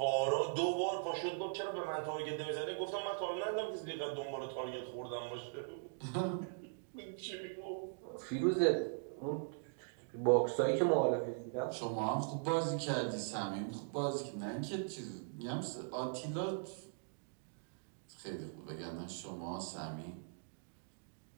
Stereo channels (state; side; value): silent; left; digital silence